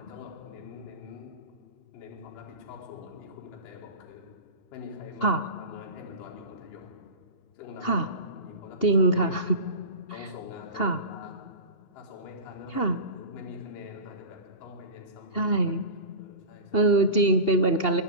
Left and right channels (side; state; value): right; late; 2.8 ms